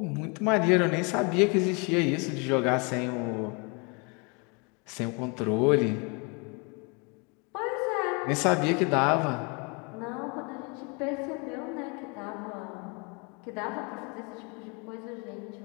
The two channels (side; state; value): right; quieter; 32.0 dB